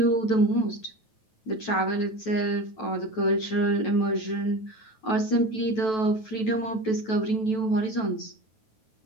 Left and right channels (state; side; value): late; right; 9.2 ms